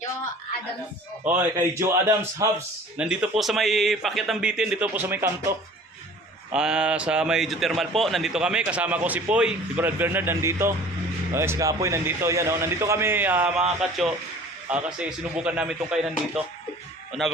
Joe Adams. Oy, kay Joe Adams Hubs. Nandito po sa may Pakyat ng Bitin, dito po sa may kanto. Sa may geothermal po, nandito kami kasama ko si Poy, si Brad Bernard nandito. Si Kapoy nandito, yan oh. Nandito kami mga katso kasi sinubukan namin tong kainan dito.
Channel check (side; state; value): both; normal; correlation 0.46